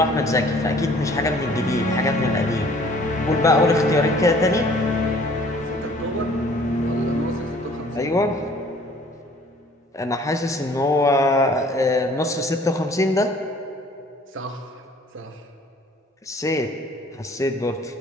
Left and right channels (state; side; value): normal; both; correlation 0.54